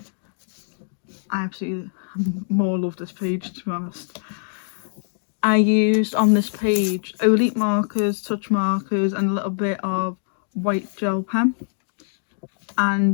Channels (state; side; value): silent; right; digital silence